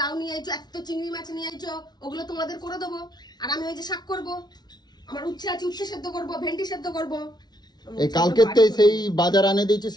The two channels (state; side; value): late; right; 0.20 ms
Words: লাউ নিয়ে আইছো, এত চিংড়ি মাছ নিয়ে আইছো, ওগুলো তোমাদের করে দেবো। আর আমি ওই যে শাক করবো, আমার উচ্ছে আছে, উচ্ছে সেদ্ধ করবো, ভেন্ডি সেদ্ধ করবো। এই কালকের সেই বাজার আনে দিয়েছে,